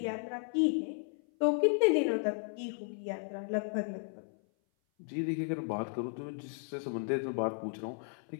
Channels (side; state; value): right; silent; 55 dB below the other